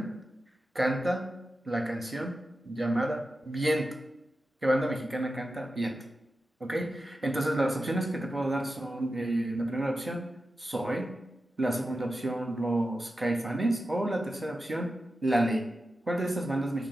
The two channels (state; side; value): normal; both; correlation 0.91